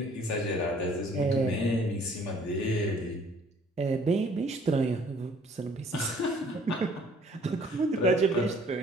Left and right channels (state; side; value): normal; both; correlation 0.57